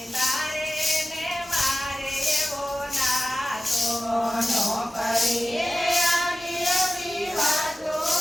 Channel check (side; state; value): both; normal; correlation 0.95